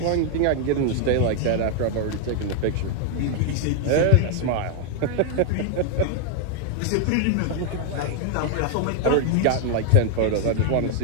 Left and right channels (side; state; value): both; different; correlation 0.00